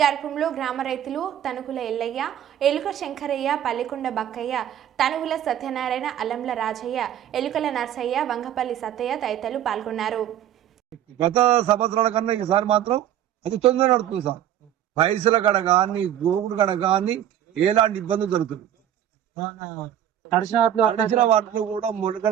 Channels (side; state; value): left; quieter; 10.8 dB